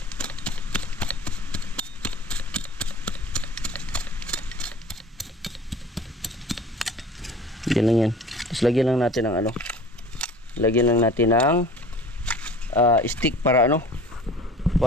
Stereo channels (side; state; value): both; normal; correlation 0.44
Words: Yan lang yan. Tapos lagyan lang natin ng ano. Lagyan lang natin ng stick para ano.